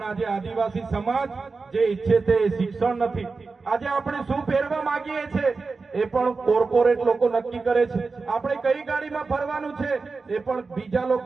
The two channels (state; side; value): quieter; left; 4.2 dB